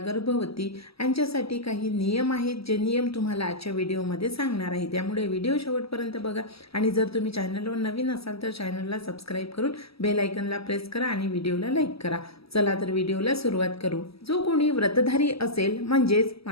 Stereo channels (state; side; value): late; right; 0.76 ms